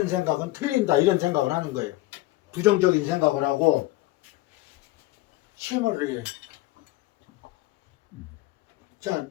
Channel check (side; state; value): right; quieter; 18.5 dB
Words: 생각은 틀린다, 이런 생각을 하는 거예요. 부정적인 생각을 하고 침을 해요. 자,